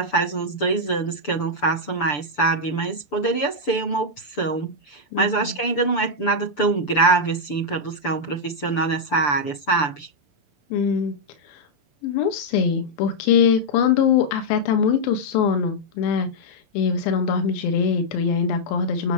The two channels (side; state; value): right; late; 6.9 ms